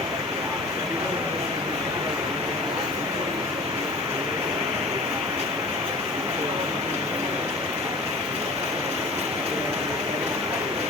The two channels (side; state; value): right; quieter; 3.2 dB